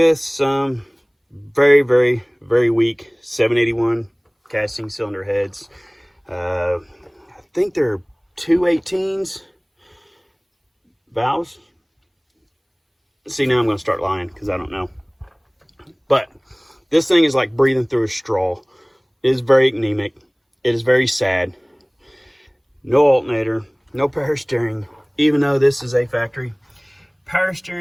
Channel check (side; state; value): both; identical; correlation 1.00